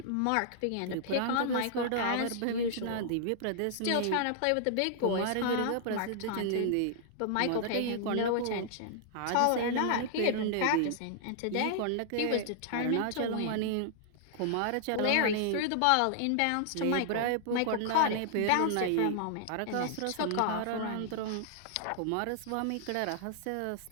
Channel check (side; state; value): both; different; correlation -0.01